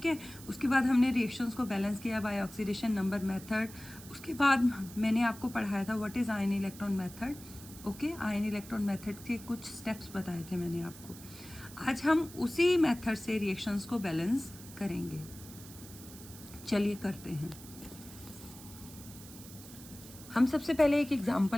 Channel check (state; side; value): noise; right; hiss, 17 dB below the sound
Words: है, उसके बाद हमने रिएक्शंस को बैलेंस किया बाय ऑक्सीडेशन नंबर मेथड. उसके बाद मैंने आपको पढ़ाया था what is ion electron method. Okay, ion electron method के कुछ स्टेप्स बताए थे मैंने आपको. आज हम उसी मेथड से रिएक्शंस को बैलेंस करेंगे. चलिए करते हैं. हम सबसे पहले एक